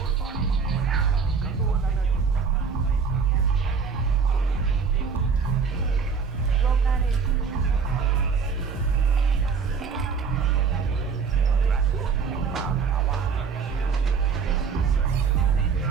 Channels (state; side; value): quieter; left; 5.6 dB